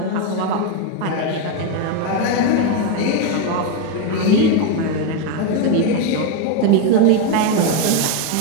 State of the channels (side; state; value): both; different; correlation 0.02